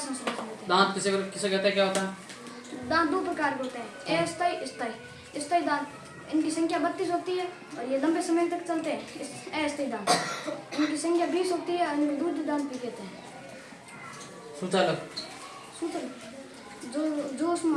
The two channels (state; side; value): identical; both; correlation 1.00